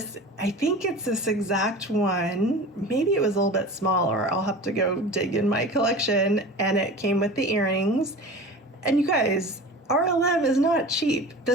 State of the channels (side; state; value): both; normal; correlation 0.36